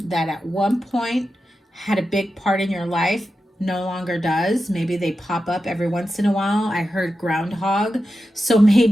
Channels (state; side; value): normal; both; correlation 0.91